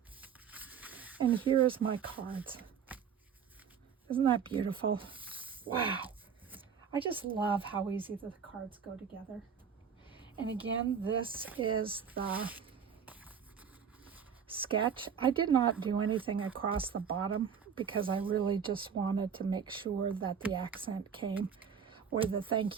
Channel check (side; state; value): left; quieter; 7.3 dB